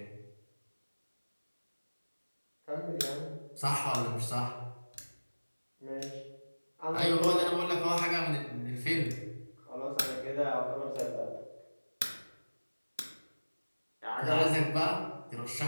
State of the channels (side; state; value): both; inverted; correlation -1.00